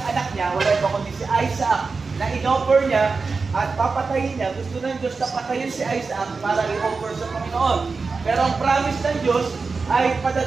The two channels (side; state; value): left; quieter; 4.4 dB